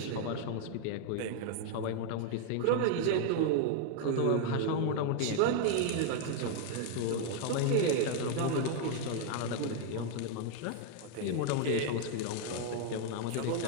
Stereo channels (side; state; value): both; different; correlation 0.00